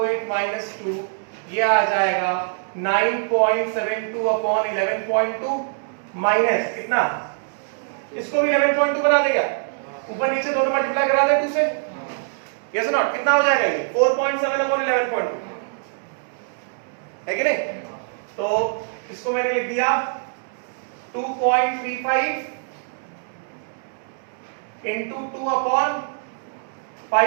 minus 2 ये आ जाएगा 9.72 अपॉन 11.2 माइनस कितना, इसको भी 11.2 बना देगा, ऊपर नीचे दोनों मल्टीप्लाई करा दे 2 से, यस और नॉट, कितना हो जाएगा ये 4.7 अपॉन 11.2 है कि नहीं। तो इसको मैंने लिख दिया 2.35 into 2 अपॉन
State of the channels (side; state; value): left; silent; digital silence